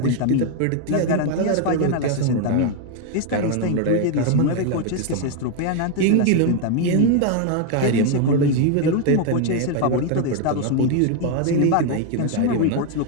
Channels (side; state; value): both; different; correlation 0.01